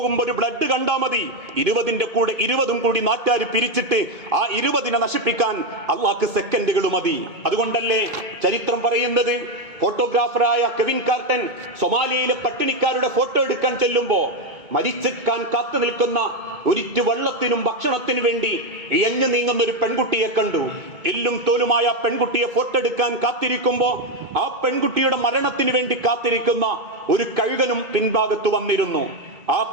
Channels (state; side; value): late; left; 2.2 ms